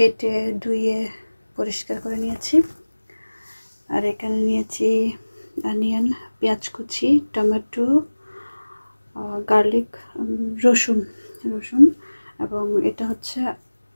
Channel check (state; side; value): inverted; both; correlation -1.00